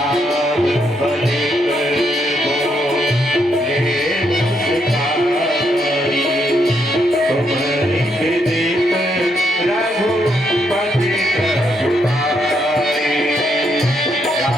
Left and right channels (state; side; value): normal; both; correlation 0.76